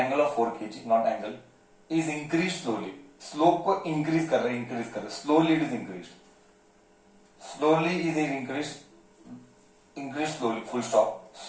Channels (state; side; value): identical; both; correlation 1.00